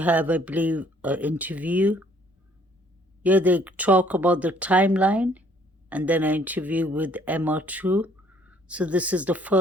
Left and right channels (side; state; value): both; normal; correlation 0.61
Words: I believe, an interview. Yeah, they talk about the timeline and then an interview with Emma too. So this is the